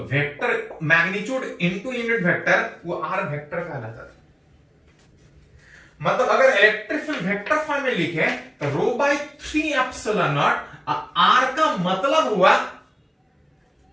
vector magnitude into unit vector वो आर वेक्टर कहलाता था। मतलब अगर इलेक्ट्रिक फील्ड वेक्टर फॉर्म में लिखे तो rho by 3 epsilon not, are का मतलब हुआ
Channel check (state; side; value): identical; both; correlation 1.00